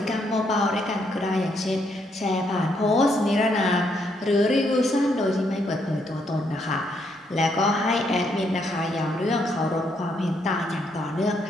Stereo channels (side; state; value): both; normal; correlation 0.74